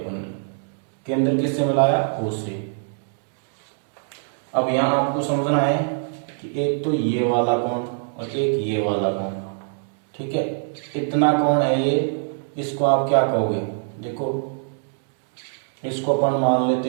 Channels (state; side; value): silent; left; digital silence